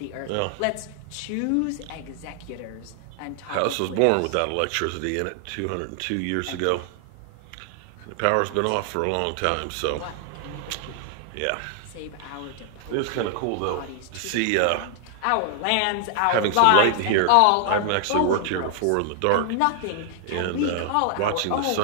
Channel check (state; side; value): different; both; correlation 0.00